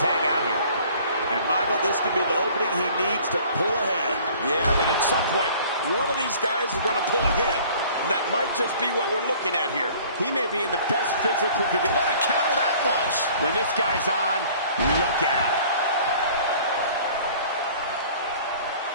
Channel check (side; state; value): both; inverted; correlation -0.51